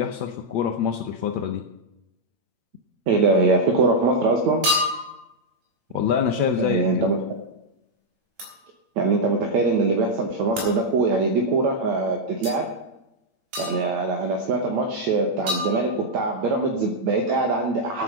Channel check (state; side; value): late; left; 8.8 ms